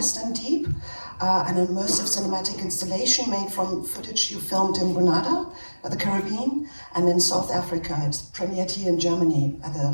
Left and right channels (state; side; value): inverted; both; correlation -1.00